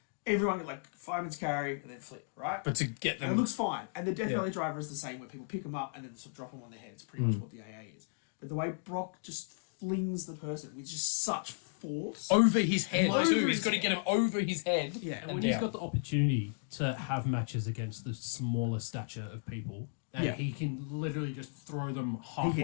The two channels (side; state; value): right; silent; digital silence